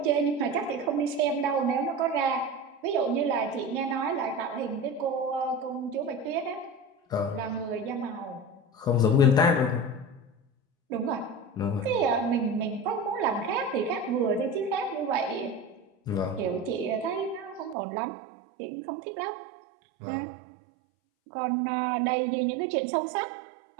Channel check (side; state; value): left; drops out; at 17.8 s